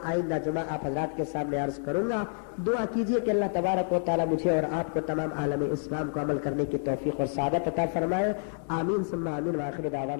آئندہ جمعہ آپ حضرات کے سامنے عرض کروں گا. دعا کیجئے کہ اللہ تبارک و تعالی مجھے اور آپ کو تمام عالم اسلام کو عمل کرنے کی توفیق اور سعادت عطا فرمائے. آمین ثم آمین. وآخر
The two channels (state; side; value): silent; right; digital silence